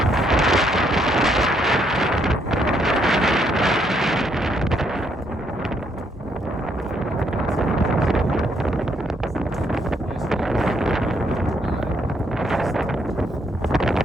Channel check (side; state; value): both; normal; correlation 0.73